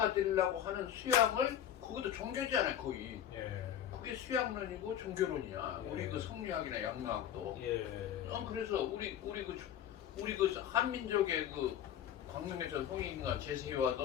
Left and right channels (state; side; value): quieter; right; 10.3 dB